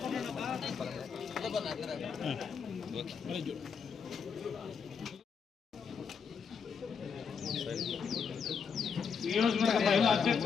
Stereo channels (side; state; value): right; quieter; 6.2 dB